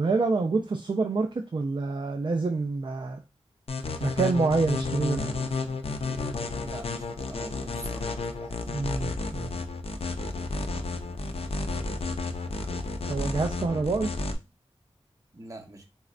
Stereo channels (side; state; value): both; normal; correlation 0.77